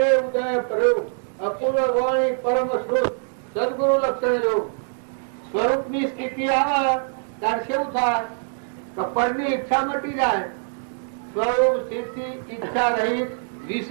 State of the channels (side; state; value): left; silent; digital silence